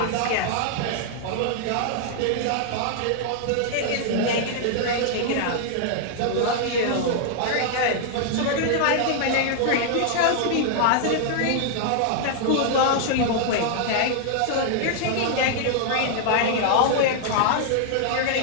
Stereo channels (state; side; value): different; both; correlation -0.01